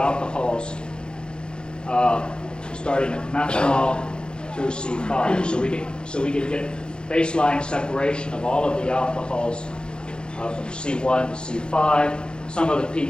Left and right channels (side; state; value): right; late; 0.050 ms